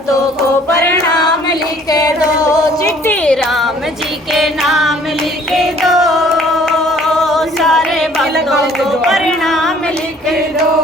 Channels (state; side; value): normal; both; correlation 0.56